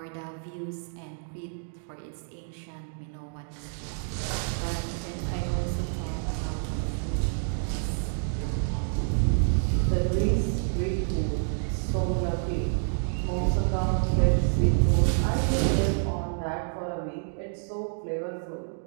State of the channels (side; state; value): left; silent; 59 dB below the other